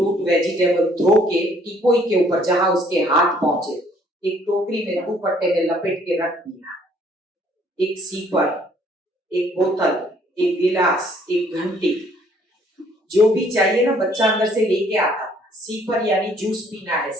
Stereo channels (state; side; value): normal; both; correlation 0.62